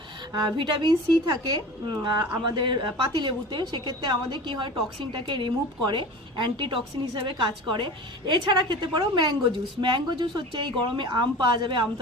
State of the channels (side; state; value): both; normal; correlation 0.36